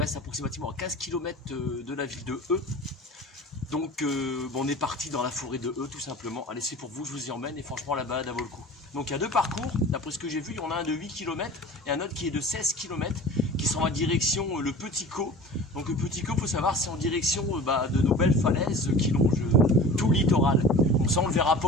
approximativement à 15 km de la ville de E. Donc, on est parti dans la forêt de E, tout simplement. Allez, c'est pour vous, je vous y emmène. Et franchement, la balade, elle vaut le coup. Donc, il y a deux parcours. D'après ce que j'ai vu, il y en a un de 8 km et un autre qui est de 16 km, qui sont en direction le Petit Caux. Donc, le Petit Caux, il faut savoir, c'est en direction de nos belles falaises qui longent tout le littoral. Donc, ça, on ne le verra pas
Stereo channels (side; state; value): both; normal; correlation 0.39